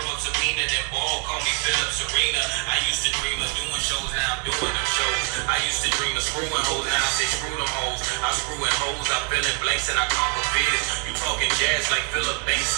Sabina, then ball, call me Philip Serena. I used to dream of doing shows, now I'm doing them shows. I used to dream of screwing hoes, now I say screw them hoes. I'm screwing hoes, I fill in blanks and I conquer fears. You talking jazz like Philip Banks,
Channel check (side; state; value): left; quieter; 37.6 dB